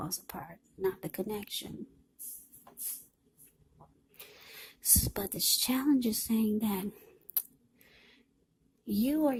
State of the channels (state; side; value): identical; both; correlation 1.00